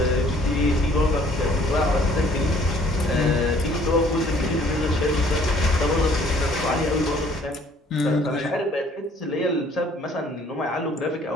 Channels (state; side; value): normal; both; correlation 0.58